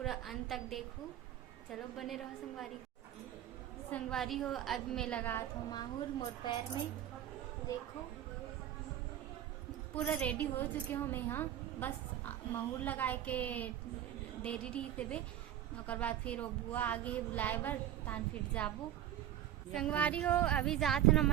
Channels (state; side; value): quieter; left; 11.7 dB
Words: अंत तक देखो। चलो बने रहो संगवारी हो। अब मैं लगा हूँ माहौर मोर पैर में, देखो पूरा रेडी हो चुके हो मैं। हाँ, बस महूर लगाए के देरी रही थे ओकर बाद फिर वो बुआ आगे है बुलाए बर तान फिर जाबो संगवारी हो। अभी जात न